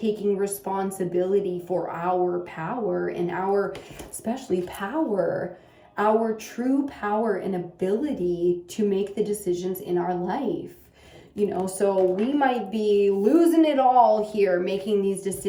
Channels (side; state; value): both; identical; correlation 1.00